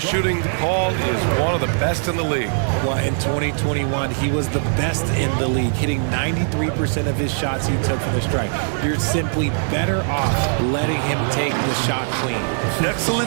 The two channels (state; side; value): silent; left; 57 dB below the other